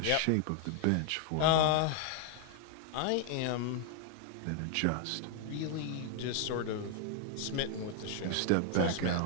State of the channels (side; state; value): both; different; correlation 0.00